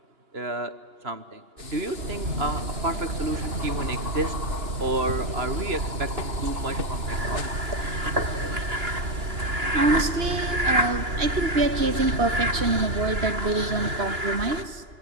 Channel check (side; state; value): left; late; 2.9 ms